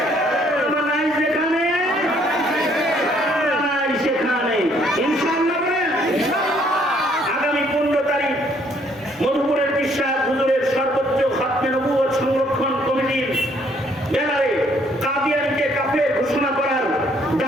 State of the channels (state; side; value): normal; both; correlation 0.65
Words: উলামা নাই যেখানে, নাই সেখানে। ইনশাআল্লাহ বলেন। আগামী 15 তারিখ মধুপুরের বিশ্বাস হুজুরের সর্বোচ্চ খাতমে নবুয়ত সংরক্ষণ কমিটির ব্যানারে কাদিয়ানীকে কাফের ঘোষণা করার